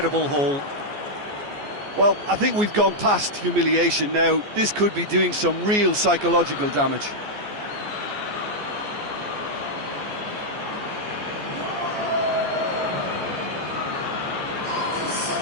haul. Well, I think we've gone past humiliation now. This could be doing some real psychological damage.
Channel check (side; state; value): left; late; 14 ms